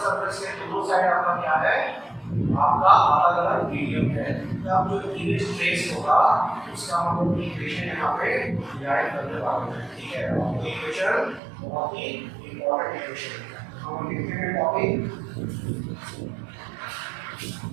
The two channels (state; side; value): drops out; left; at 11.4 s